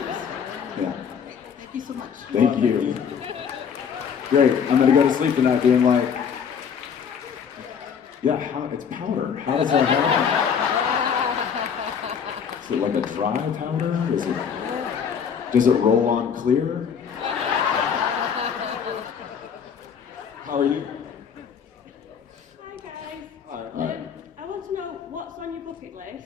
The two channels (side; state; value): right; quieter; 7.2 dB